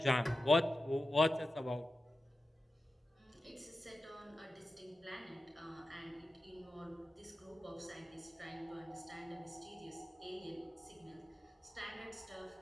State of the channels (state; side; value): normal; both; correlation 0.93